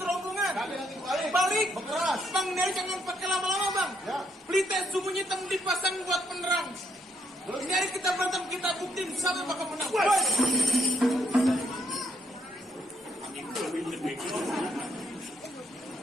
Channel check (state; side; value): normal; both; correlation 0.74